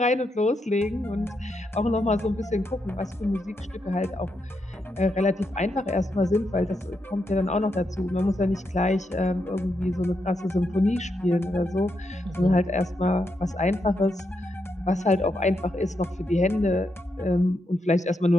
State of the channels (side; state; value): both; normal; correlation 0.82